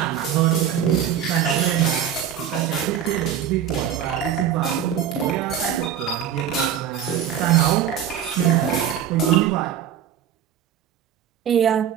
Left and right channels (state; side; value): quieter; left; 9.3 dB